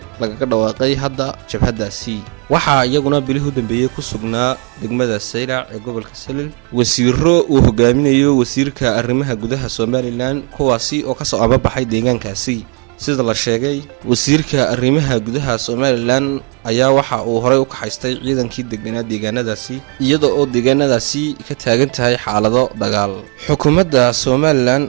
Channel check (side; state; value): left; quieter; 34.6 dB